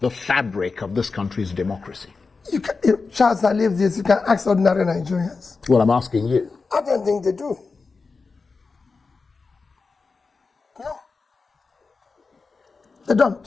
fabric of this country's democracy? You can, if Charles, I leave this, you can ask ordinary Nigerians. Well, I'm asking you. I don't think they do. No. They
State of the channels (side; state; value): right; quieter; 4.4 dB